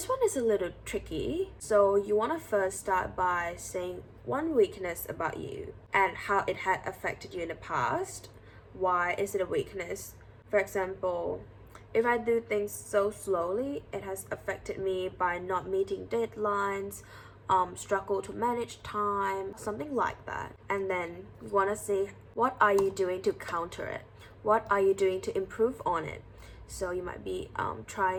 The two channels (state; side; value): identical; both; correlation 1.00